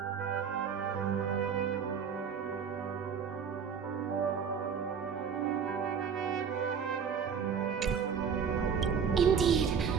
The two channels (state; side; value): quieter; left; 6.8 dB